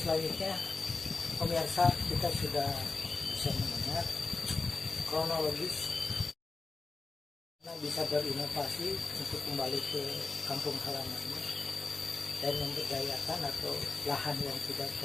selanjutnya pemirsa kita sudah bisa mendengar kronologis bisa berinovasi untuk kembali ke kampung halamannya dan memberdayakan atau lahan yang tidak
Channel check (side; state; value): right; quieter; 3.9 dB